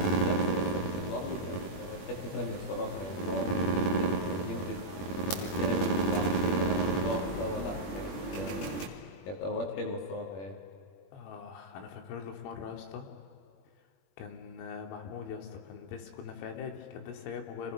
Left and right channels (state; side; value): late; right; 20 ms